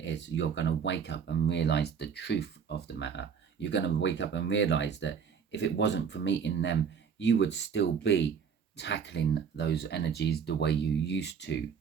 is. You're going to wake up and realize the truth of the matter. You're going to wake up and realize that if it wasn't for meeting them, you would still be tackling those energies the way you used to,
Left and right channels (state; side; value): quieter; left; 6.7 dB